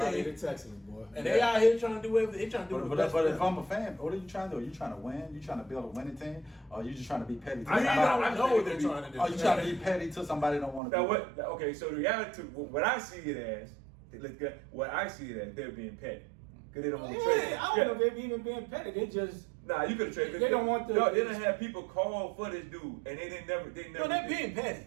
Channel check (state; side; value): drops out; left; at 10.8 s